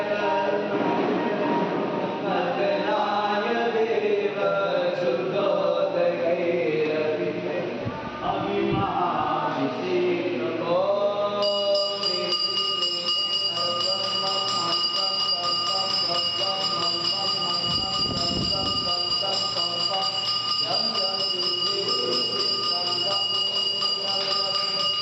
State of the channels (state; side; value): identical; both; correlation 1.00